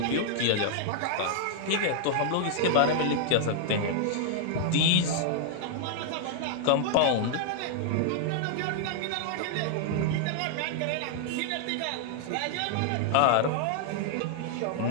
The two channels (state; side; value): different; both; correlation -0.01